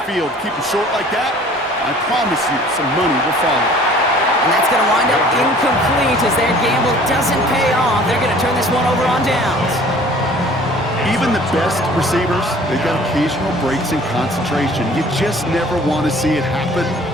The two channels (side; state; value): both; normal; correlation 0.51